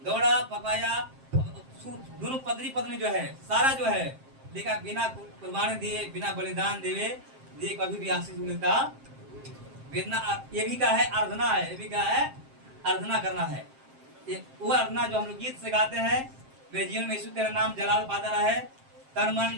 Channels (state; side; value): late; left; 7.5 ms